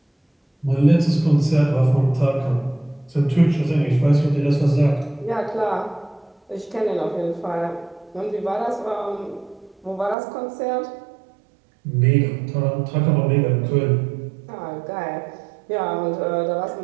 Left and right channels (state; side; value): drops out; left; at 10.2 s